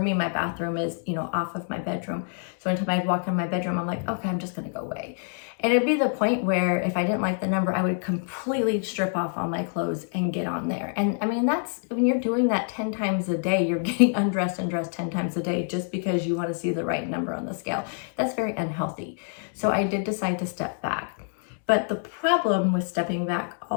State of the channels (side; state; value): right; silent; 57 dB below the other